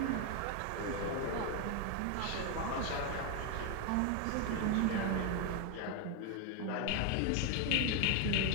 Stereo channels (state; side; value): different; both; correlation 0.01